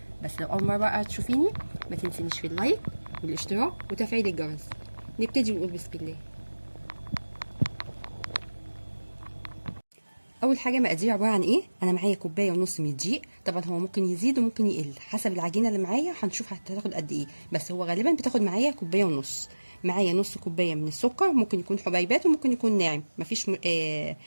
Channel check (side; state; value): both; inverted; correlation -1.00